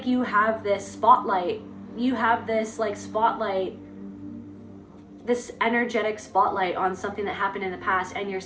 you have this spotlight. You have this like spotlight, this energetic spotlight on something that happened in the past, and you're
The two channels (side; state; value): both; identical; correlation 1.00